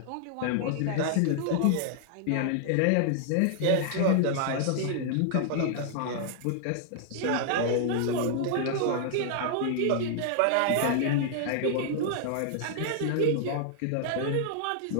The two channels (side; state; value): both; different; correlation -0.01